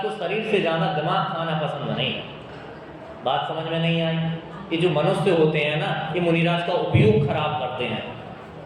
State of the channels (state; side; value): identical; both; correlation 1.00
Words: को शरीर से ज़्यादा दिमाग खाना पसंद नहीं है। बात समझ में नहीं आई? ये जो मनुष्य होते हैं ना, ये मुनिराज का उपयोग खराब करते हैं।